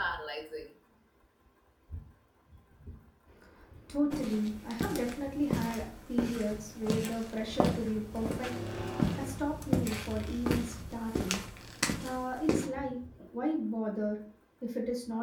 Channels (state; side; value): identical; both; correlation 1.00